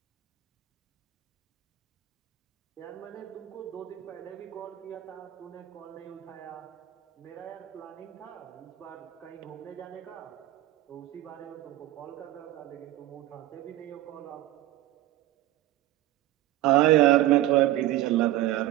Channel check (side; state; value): left; quieter; 15.4 dB